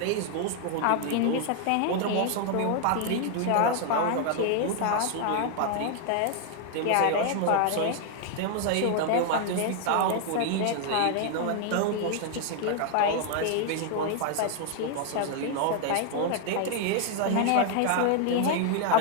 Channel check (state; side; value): different; both; correlation 0.00